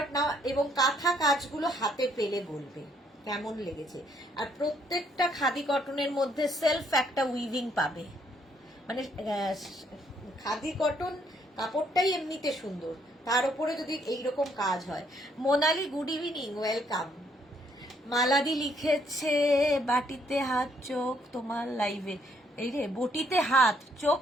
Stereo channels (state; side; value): normal; both; correlation 0.69